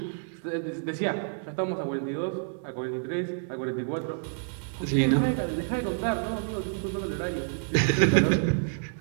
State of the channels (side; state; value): left; silent; digital silence